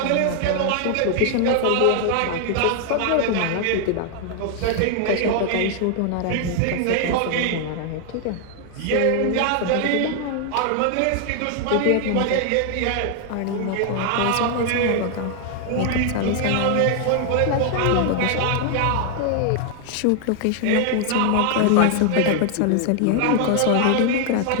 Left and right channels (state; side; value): different; both; correlation 0.00